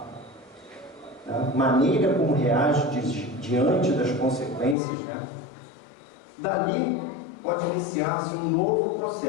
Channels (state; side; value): drops out; right; at 4.8 s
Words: né? Maneira como reage diante das consequências, né? Dali pode iniciar-se um novo